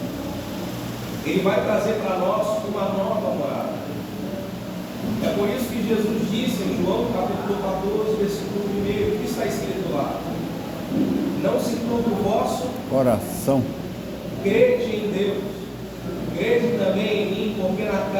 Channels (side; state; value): both; identical; correlation 1.00